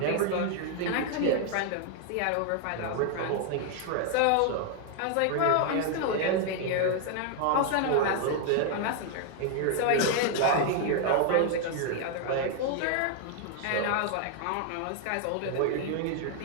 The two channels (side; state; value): both; different; correlation 0.00